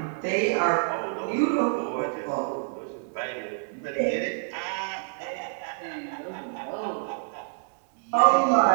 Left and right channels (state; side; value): silent; left; digital silence